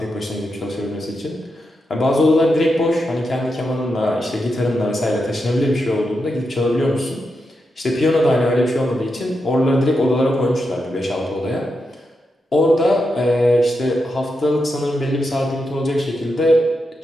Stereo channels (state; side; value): normal; both; correlation 0.86